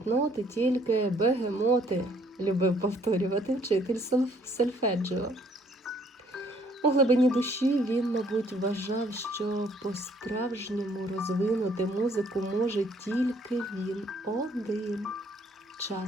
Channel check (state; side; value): normal; both; correlation 0.63